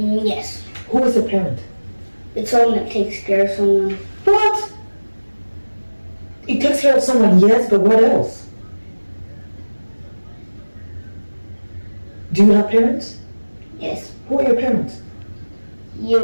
Who is a parent? It's someone that takes care of someone. What? It takes care of someone, yes, but what else? Do you have parents? Yes. Who are your parents?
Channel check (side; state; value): both; inverted; correlation -1.00